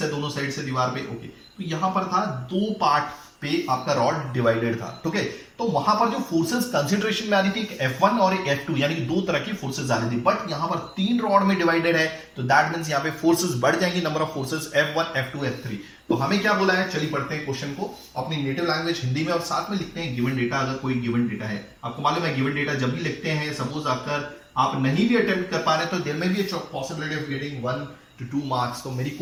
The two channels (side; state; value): both; identical; correlation 1.00